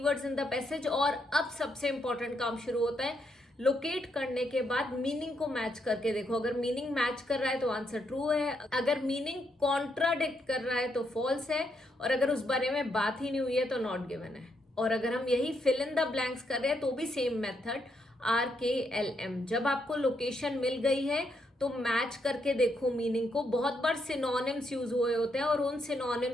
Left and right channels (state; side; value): normal; both; correlation 0.78